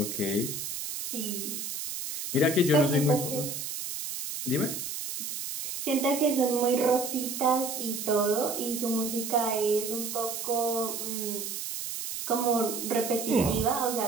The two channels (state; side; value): noise; right; hiss, 5 dB below the sound